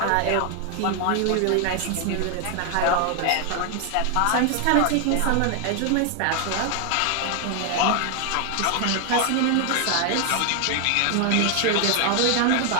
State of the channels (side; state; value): both; different; correlation 0.00